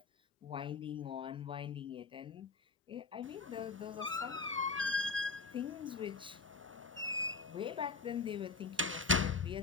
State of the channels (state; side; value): quieter; right; 4.3 dB